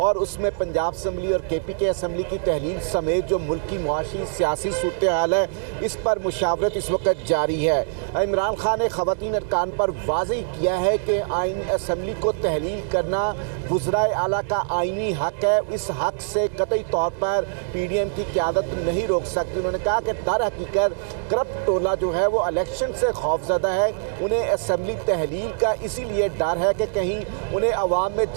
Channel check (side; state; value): left; silent; digital silence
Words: उसमें पंजाब असम्बली और KPK असम्बली की तहलील समेत जो मुल्क की मुआशी सियासी सूरत हाल है इस पर मुशावरत इस वक्त जारी है। इमरान खान ने खवातीन अरकान पर वाज़ेह किया है कि आइन असम्बली को तहलील करना वज़राए आला का आइनी हक है। इस हक से कतई तौर पर PDM की क़यादत नहीं रोक सकती। उन्होंने कहा कि दर हकीकत करप्ट टोला जो है वो इलेक्शन से खौफज़दा है। उन्हें असम्बली तहलील का इसीलिए डर है कि कहीं उन्हें अवाम में